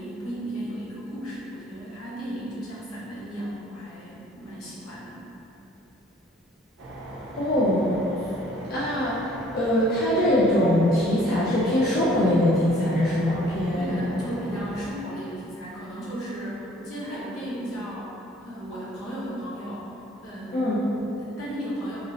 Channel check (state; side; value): normal; both; correlation 0.57